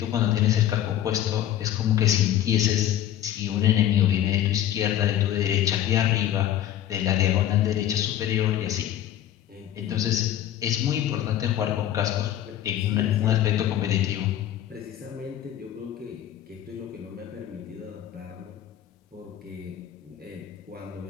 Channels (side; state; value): right; quieter; 11.5 dB